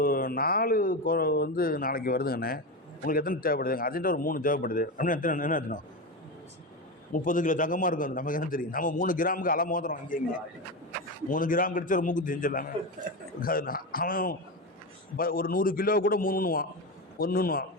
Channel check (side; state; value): both; normal; correlation 0.18